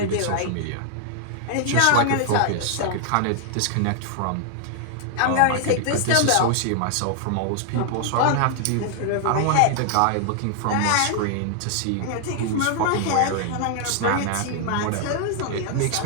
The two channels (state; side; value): different; both; correlation 0.00